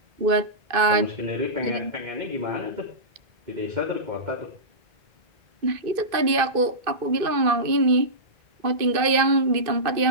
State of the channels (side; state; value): left; late; 2.5 ms